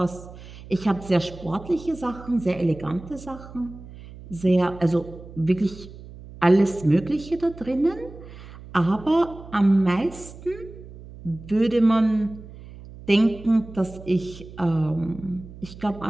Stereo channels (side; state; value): right; noise; hum, 16 dB below the sound